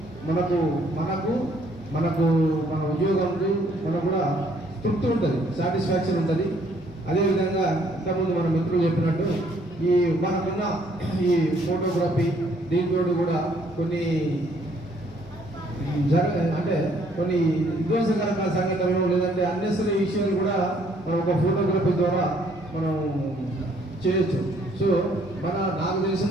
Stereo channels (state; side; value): normal; both; correlation 0.65